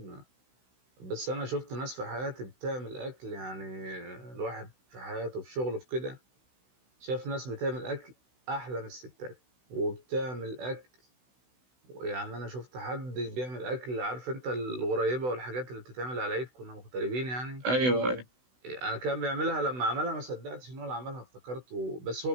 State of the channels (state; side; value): late; left; 16 ms